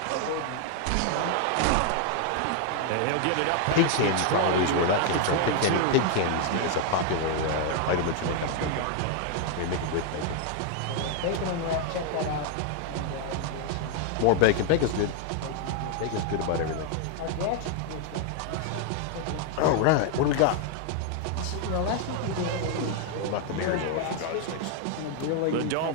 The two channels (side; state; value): both; different; correlation 0.00